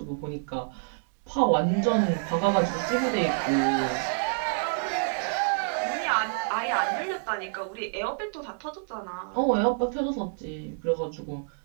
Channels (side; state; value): left; silent; digital silence